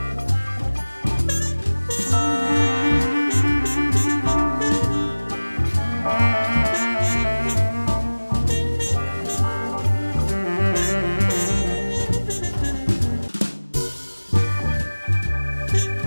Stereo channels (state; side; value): inverted; both; correlation -1.00